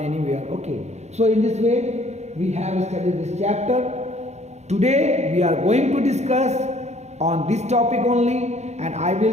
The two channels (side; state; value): left; late; 0.32 ms